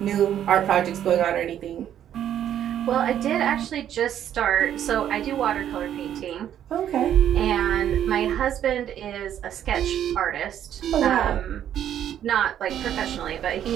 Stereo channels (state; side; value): quieter; left; 10.4 dB